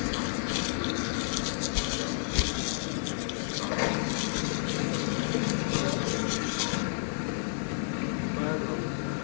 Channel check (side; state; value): right; silent; digital silence